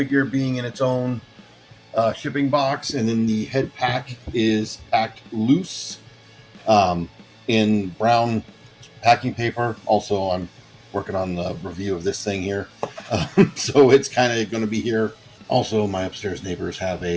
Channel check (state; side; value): identical; both; correlation 1.00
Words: being in its own shipping box. And then the head pack is packed loose in brown packing paper. Also, I'm working on the review of this thing here. So it's kind of going to be here. Also, my upstairs neighbors have